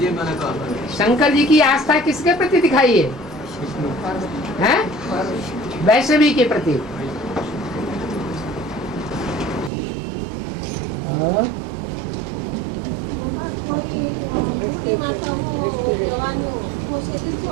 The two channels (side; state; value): left; drops out; at 9.7 s